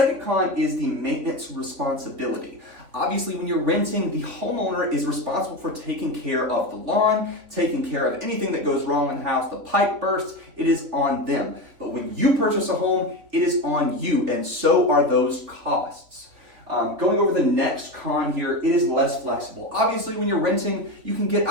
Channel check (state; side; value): late; left; 3.7 ms